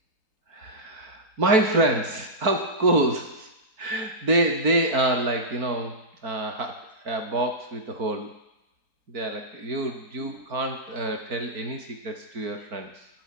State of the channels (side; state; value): left; late; 4.5 ms